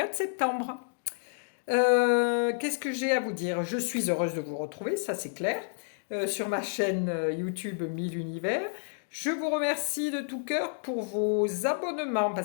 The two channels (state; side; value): silent; right; digital silence